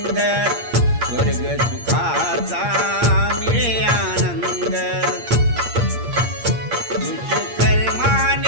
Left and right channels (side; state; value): left; late; 8.6 ms